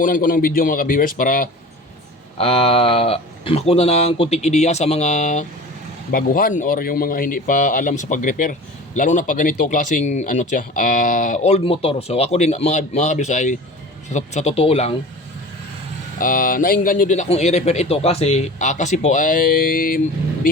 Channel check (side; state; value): both; normal; correlation 0.38